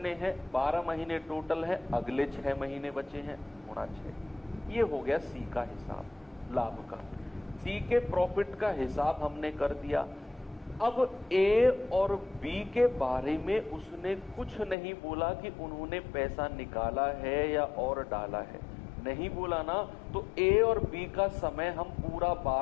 हैं? 12 महीने टोटल है। अगले 6 महीने बचे हैं, गुणा 6। ये हो गया सी का हिसाब, लाभ का। सी के प्रॉफिट का हिसाब हमने कर दिया। अब ए और बी के बारे में उसने कुछ नहीं बोला कि उन्होंने पैसा निकाला है या और डाला है, नहीं बोला ना। तो ए और बी का समय हम पूरा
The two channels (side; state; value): right; drops out; at 14.8 s